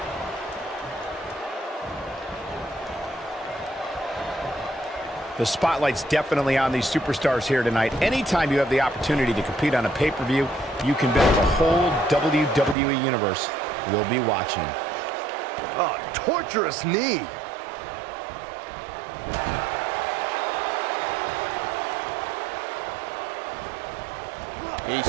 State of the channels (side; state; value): left; drops out; at 12.8 s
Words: The spotlight's definitely on these superstars here tonight. Anytime you have the opportunity to compete on a pay-per-view, you can bet the whole WWE Universe will be watching. Oh, torturous knee. He's